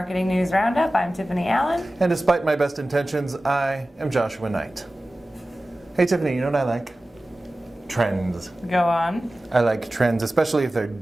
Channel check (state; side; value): normal; both; correlation 0.96